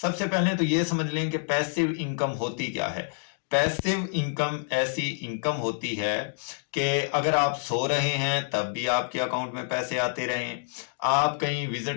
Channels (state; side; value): silent; right; digital silence